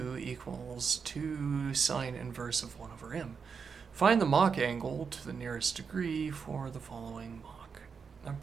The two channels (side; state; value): left; quieter; 5.9 dB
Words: equals 2 sine inverse of 1 over m. Find the Mach angle to the nearest degree for the following Mach